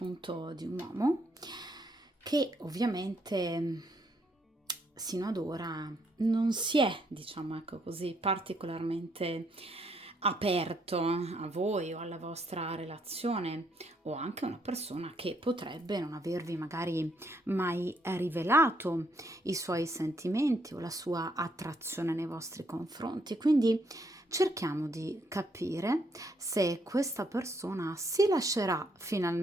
di un uomo che ovviamente sino ad ora non si è, diciamo ecco così, particolarmente aperto a voi o alla vostra relazione, o anche una persona che potrebbe non avervi magari mai rivelato i suoi sentimenti o la sua attrazione nei vostri confronti. Quindi cerchiamo di capire se questa persona si lascerà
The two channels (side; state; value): both; normal; correlation 0.73